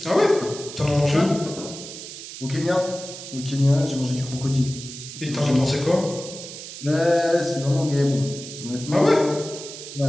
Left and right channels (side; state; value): right; noise; hiss, 12 dB below the sound